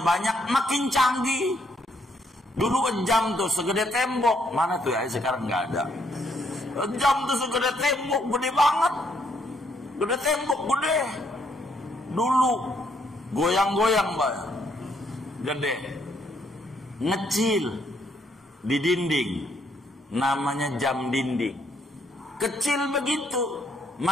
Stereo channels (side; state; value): both; normal; correlation 0.71